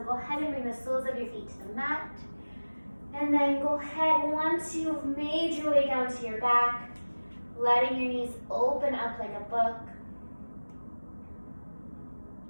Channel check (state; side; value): inverted; both; correlation -1.00